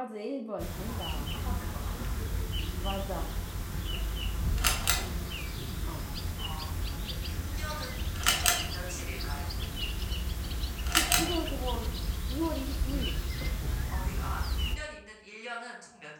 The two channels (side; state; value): both; identical; correlation 1.00